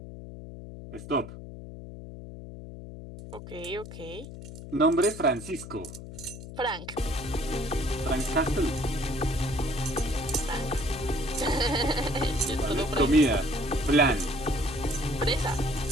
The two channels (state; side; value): noise; left; hum, 12 dB below the sound